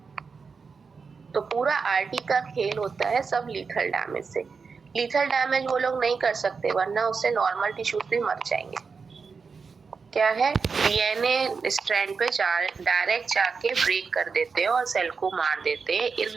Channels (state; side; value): quieter; left; 5.2 dB